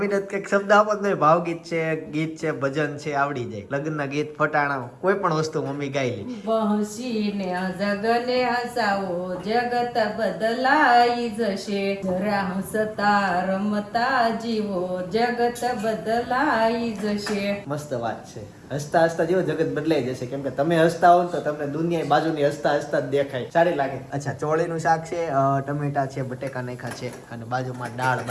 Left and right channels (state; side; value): identical; both; correlation 1.00